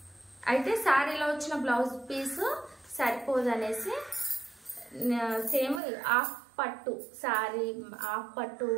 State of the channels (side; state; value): left; drops out; at 5.8 s